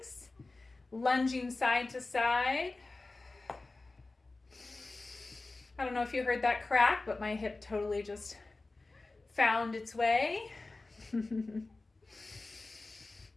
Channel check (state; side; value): quieter; right; 3.3 dB